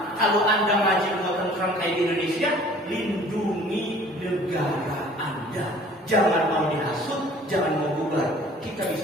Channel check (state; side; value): normal; both; correlation 0.51